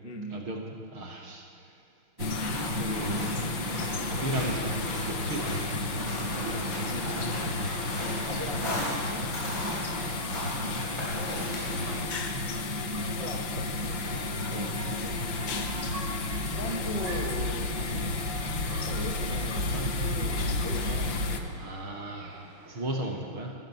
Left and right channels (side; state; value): left; late; 5.9 ms